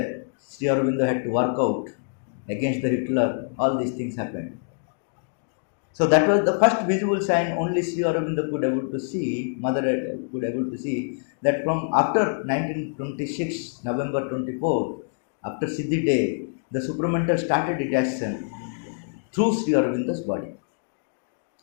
Sri Aurobindo had to work out against the Hitler. All these things happened. So that was the first visible sign only Sri Aurobindo could able to see, mother could able to see, that from after 1926, November 24, after Siddhi day, the supramental started its action through Sri Aurobindo's body.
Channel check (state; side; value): silent; right; digital silence